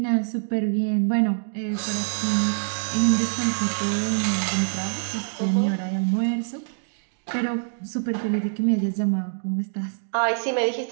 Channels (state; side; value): silent; left; digital silence